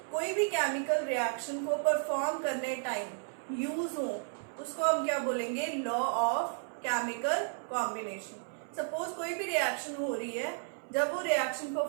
कोई भी केमिकल रिएक्शन को परफॉर्म करने टाइम यूज हो उसको हम क्या बोलेंगे? Law of chemical combination. Suppose कोई भी रिएक्शन हो रही है, जब वो रिएक्शन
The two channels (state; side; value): silent; left; 56 dB below the other